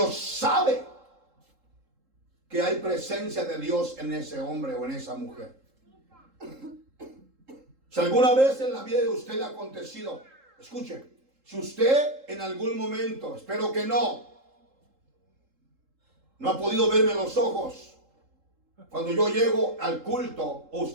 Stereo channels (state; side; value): late; left; 3.7 ms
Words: sabe que hay presencia de Dios en ese hombre o en esa mujer. Si alguna vez en la vida de usted le ha acontecido, escuche, si usted en algún momento, espero que no ha podido verme en los ojos, cuando yo llego al culto o